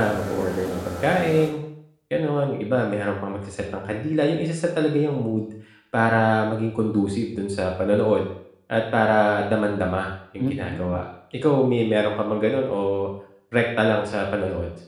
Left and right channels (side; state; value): both; identical; correlation 1.00